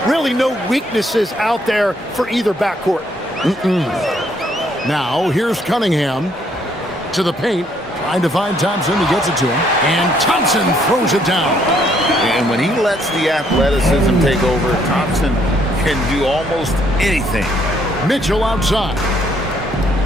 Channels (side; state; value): both; normal; correlation 0.68